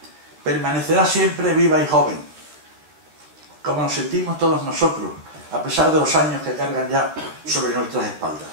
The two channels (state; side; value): late; left; 13 ms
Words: permanecerá siempre viva y joven, como nos sentimos todos nosotros, a pesar de los años que cargan ya sobre nuestras espaldas.